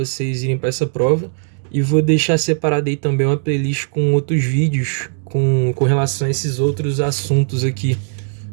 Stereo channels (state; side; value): silent; left; digital silence